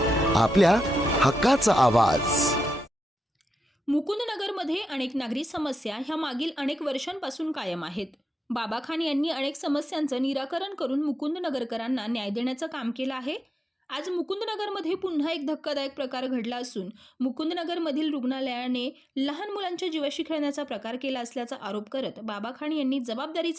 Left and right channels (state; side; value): normal; both; correlation 0.88